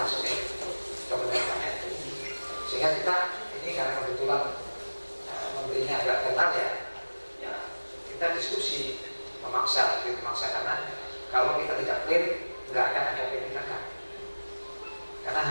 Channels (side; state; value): both; inverted; correlation -1.00